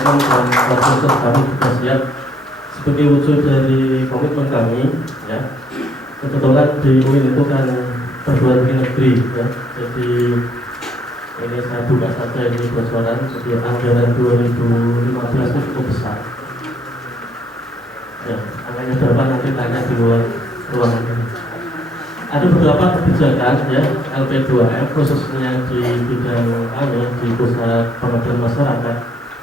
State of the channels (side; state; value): both; normal; correlation 0.69